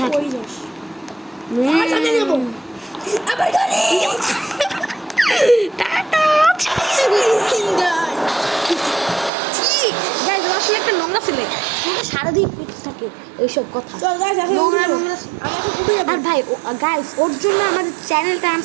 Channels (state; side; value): drops out; left; at 9.3 s